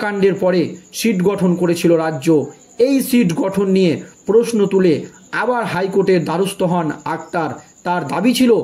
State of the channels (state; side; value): identical; both; correlation 1.00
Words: কাণ্ডের পরে সিট গঠন করেছিল রাজ্য। এই সিট গঠন নিয়ে প্রশ্ন তুলে আবার হাইকোর্টের দ্বারস্থ হন আক্তার। তার দাবি ছিল